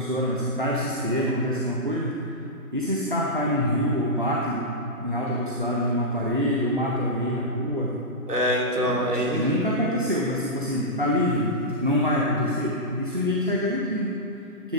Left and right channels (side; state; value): both; normal; correlation -0.11